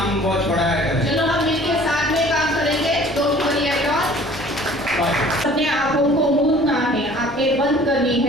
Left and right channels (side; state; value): left; noise; rumble, 21 dB below the sound